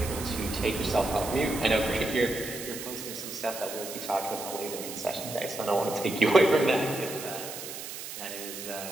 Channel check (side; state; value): right; noise; hiss, 9 dB below the sound